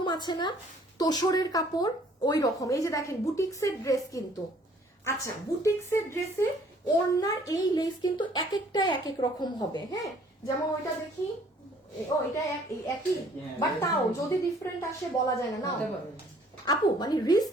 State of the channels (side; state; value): both; normal; correlation 0.58